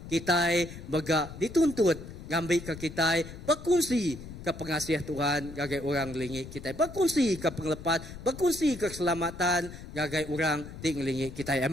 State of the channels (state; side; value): noise; left; rumble, 13 dB below the sound